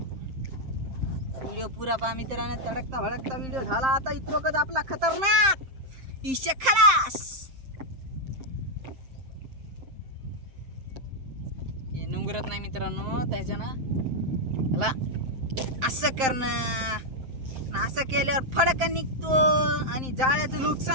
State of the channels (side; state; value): left; late; 7.6 ms